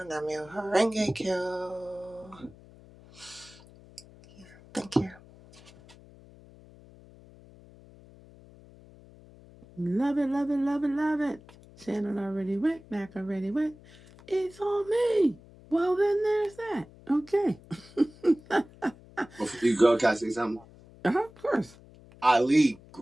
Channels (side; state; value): left; noise; hum, 23 dB below the sound